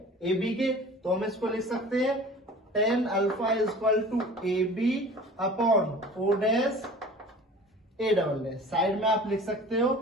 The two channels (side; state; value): both; normal; correlation 0.42